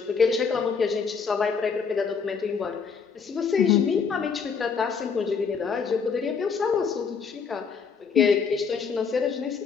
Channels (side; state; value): right; quieter; 5.8 dB